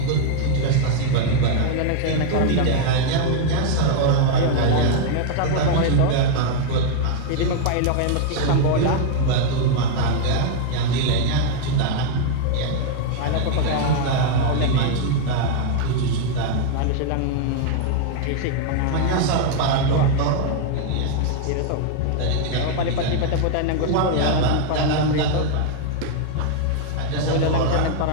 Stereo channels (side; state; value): both; different; correlation -0.01